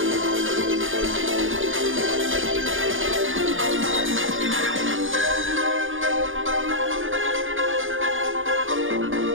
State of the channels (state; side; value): late; left; 0.58 ms